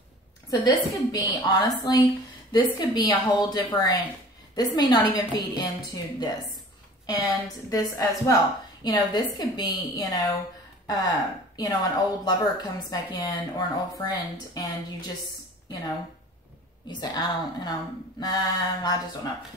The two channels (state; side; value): normal; both; correlation 0.44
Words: so this could be, honestly, this could be a whole different, this may not even feed into this. And this as well. You know, this could be, you know, an old lover comes back in, or an old friend, and you just, you know, you say, I just don't know.